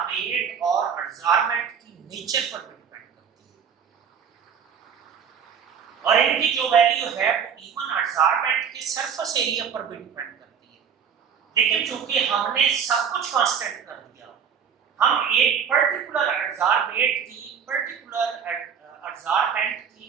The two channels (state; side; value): quieter; left; 7.3 dB